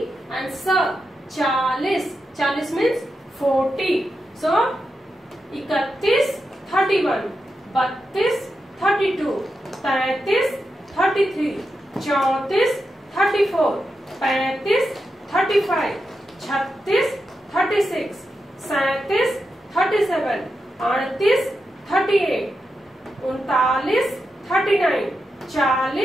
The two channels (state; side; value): normal; both; correlation 0.88